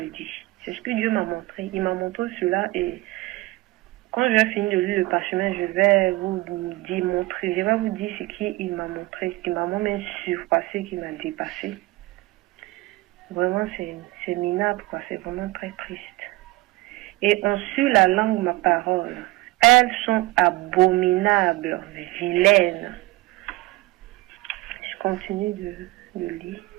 dis. C'est ce que Dieu m'a montré. Il m'a montré cela et quand je vais finir de lire le parchemin, je vais vous démontrer, je vais vous dire ce qu'il m'a montré, ce qui m'a même surpassé, qui m'a dépassé. Vraiment, c'est minable, quoi. C'est vraiment très triste. Et ont su la langue ma parole. Elles sont abominables, vilaines. Je continue de lire.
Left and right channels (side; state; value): left; quieter; 20.2 dB